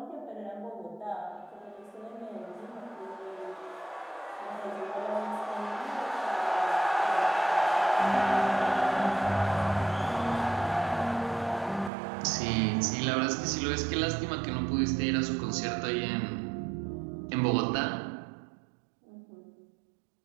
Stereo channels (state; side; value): drops out; left; at 11.9 s